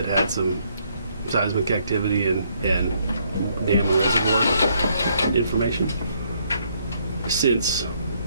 had some seismic activity and dam and reservoir information since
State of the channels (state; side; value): inverted; both; correlation -0.70